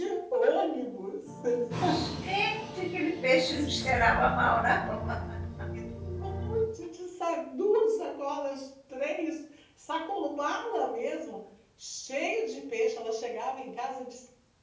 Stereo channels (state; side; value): identical; both; correlation 1.00